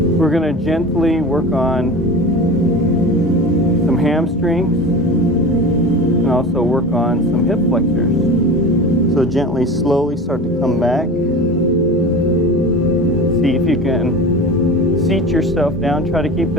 We're going to gently work on some hamstrings and also work on some hip flexors. So gently, slowly start to come back. See if you can seat yourself down. Try to keep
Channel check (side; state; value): both; normal; correlation 0.33